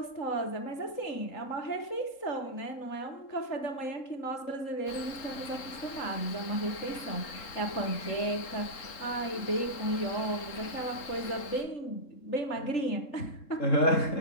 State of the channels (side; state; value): right; late; 3.7 ms